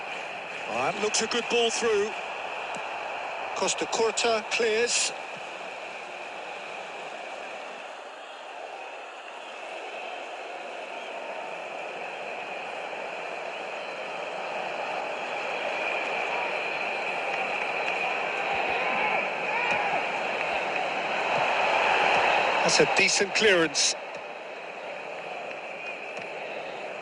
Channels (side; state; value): both; identical; correlation 1.00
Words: Oh, that looks a good ball through. Costa Curta clears. That's a decent clearance.